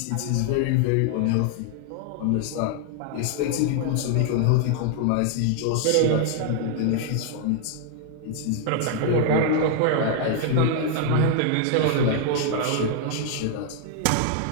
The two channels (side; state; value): both; different; correlation 0.00